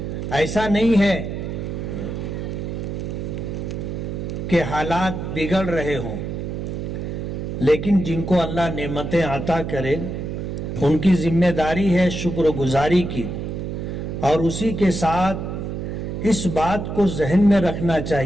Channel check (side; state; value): right; noise; hum, 5 dB below the sound